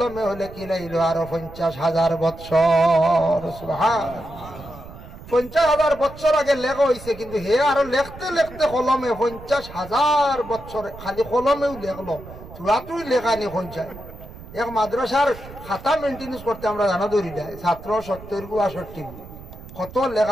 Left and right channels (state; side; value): noise; right; rumble, 16 dB below the sound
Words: হলে কি লাইল আরো 50,000 বছর। সুবহানাল্লাহ, 50,000 বছর আগে লেখা হয়েছে, কিন্তু হে আরো লিখতে লিখতে কলমে 50,000 বছর খালি কলমেও লেখলো, চূড়াতুই লেখা নি 50। এক মাদ্রাসার খাতা মেনটেন্স করতে আমরা জানা ধরি দেয় ছাত্র 70-62 কত